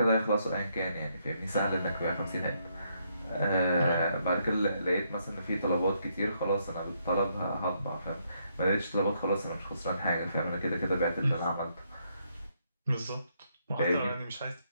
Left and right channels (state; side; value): inverted; both; correlation -0.75